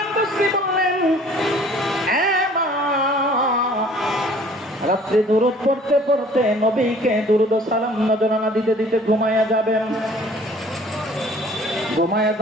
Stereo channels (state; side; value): normal; both; correlation 0.53